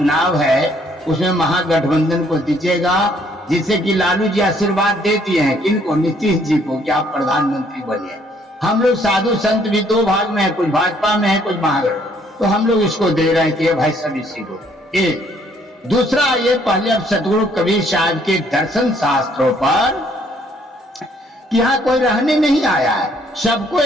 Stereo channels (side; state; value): both; normal; correlation 0.65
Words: है, उसमें महागठबंधन को दीजिएगा, जिससे कि लालू जी आशीर्वाद दे दिए हैं किनको, नीतीश जी को, कि आप प्रधानमंत्री बनिए। हम लोग साधु संत भी 2 भाग में है, कुछ भाजपा में है, कुछ महागठबंधन, तो हम लोग इसको दे रहे हैं कि भाई सब इसी को। एक दूसरा, ये पहले अब सतगुरु कबीर साहब के दर्शन शास्त्रों पर कि यहाँ कोई रहने नहीं आया है, सबको